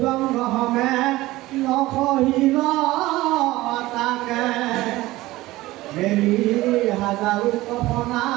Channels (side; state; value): left; quieter; 18.0 dB